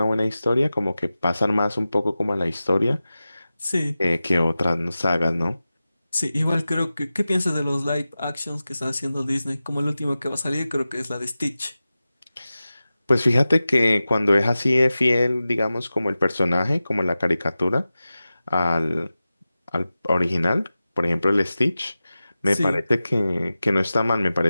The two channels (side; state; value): both; inverted; correlation -0.95